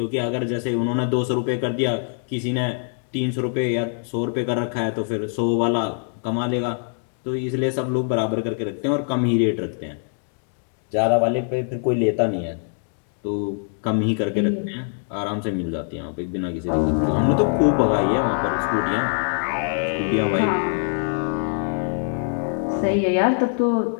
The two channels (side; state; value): right; silent; 59 dB below the other